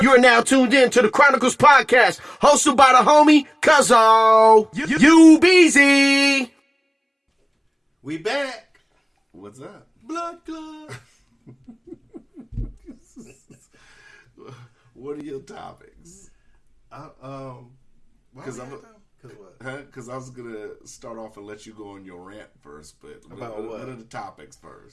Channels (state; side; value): identical; both; correlation 1.00